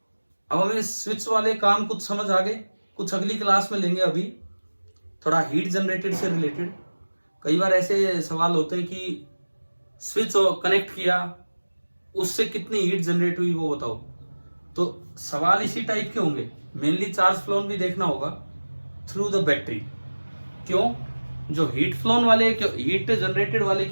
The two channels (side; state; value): both; inverted; correlation -1.00